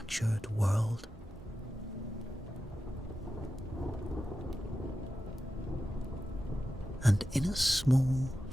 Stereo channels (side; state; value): both; normal; correlation 0.92